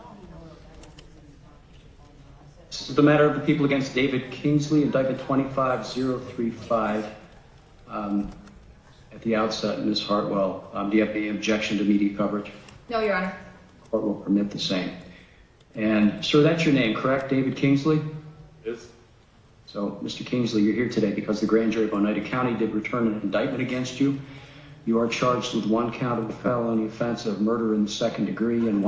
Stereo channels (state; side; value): identical; both; correlation 1.00